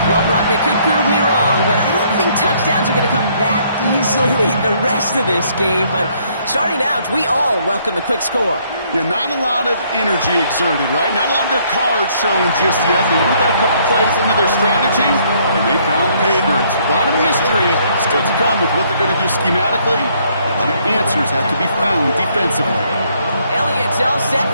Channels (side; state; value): both; inverted; correlation -0.66